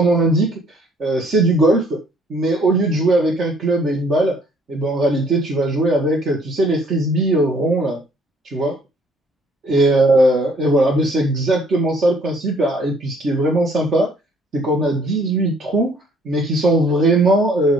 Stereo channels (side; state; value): both; normal; correlation 0.61